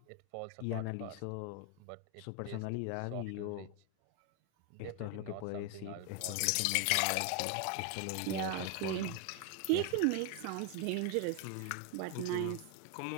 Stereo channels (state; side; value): different; both; correlation 0.01